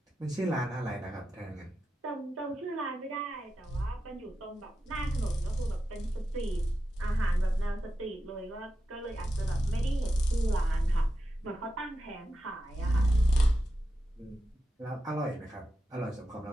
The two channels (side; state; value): both; normal; correlation 0.90